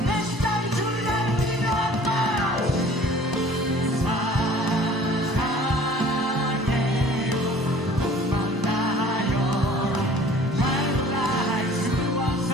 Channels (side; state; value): both; normal; correlation 0.49